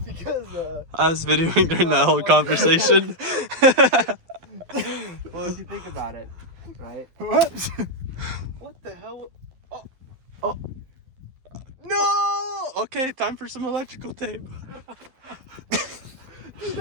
because I was videoing during that whole conversation. well, if you think about it, right? What? What the hell? Oh, No! Okay, time for some electrical tape.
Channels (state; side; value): late; left; 12 ms